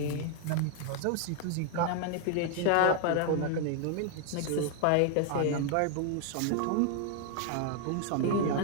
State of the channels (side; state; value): both; different; correlation 0.00